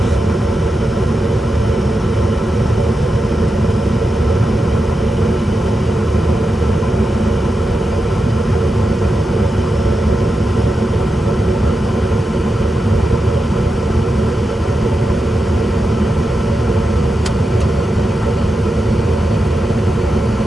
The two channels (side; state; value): both; normal; correlation 0.89